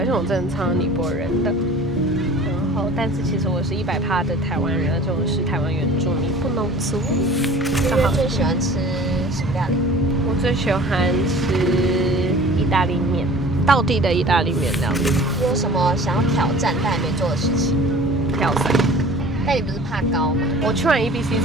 且我真的超尼泊尔人的。然后，但是其实我是100%的台湾人，而且我是台湾原住民，不农族。月月最喜欢吃什么料理？我最喜欢吃意大利面，道地的意大利面料理。你有什么想要挑战但还没做的事情？跳伞。但你不是怕高吗？我去完 EBC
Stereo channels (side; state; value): both; normal; correlation 0.45